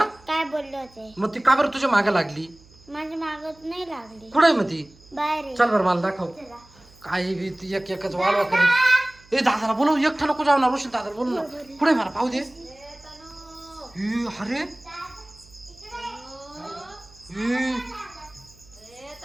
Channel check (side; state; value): right; noise; hum, 26 dB below the sound